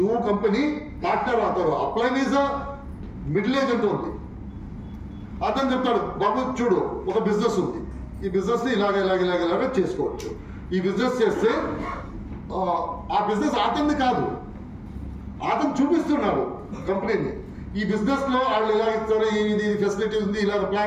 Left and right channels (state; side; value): identical; both; correlation 1.00